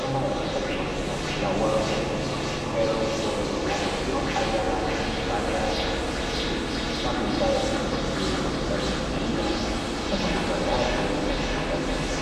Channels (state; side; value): identical; both; correlation 1.00